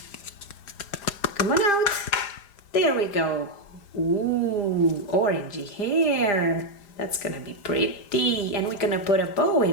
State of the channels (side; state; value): right; late; 5.0 ms